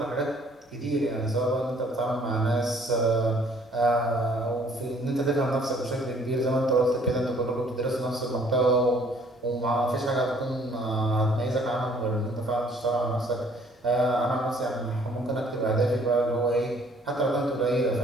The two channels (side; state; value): both; normal; correlation 0.59